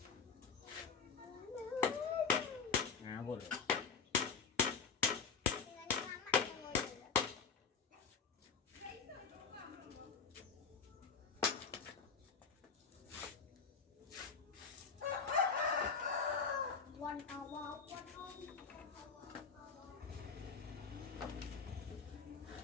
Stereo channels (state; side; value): quieter; right; 5.7 dB